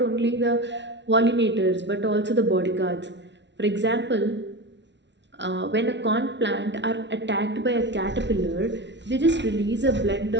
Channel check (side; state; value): left; late; 0.51 ms